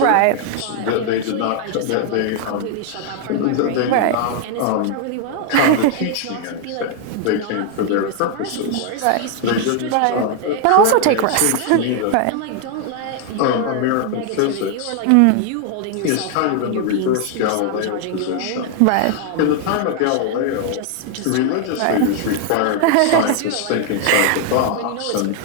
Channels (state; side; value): different; both; correlation 0.00